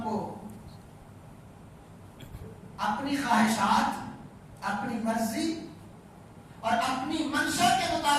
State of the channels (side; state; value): both; identical; correlation 1.00